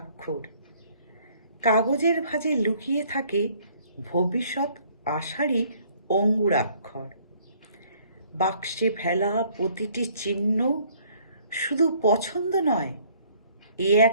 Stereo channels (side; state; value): both; inverted; correlation -0.60